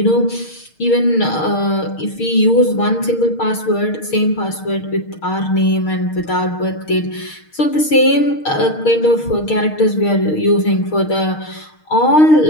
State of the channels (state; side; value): late; right; 6.5 ms